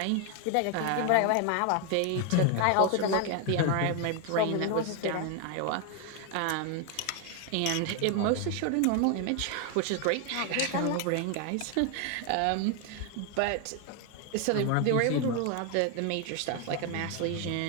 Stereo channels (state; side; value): different; both; correlation 0.01